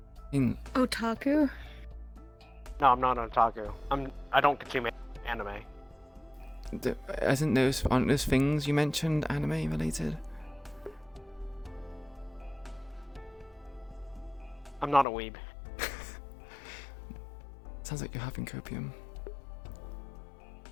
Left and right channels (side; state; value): right; drops out; at 15.1 s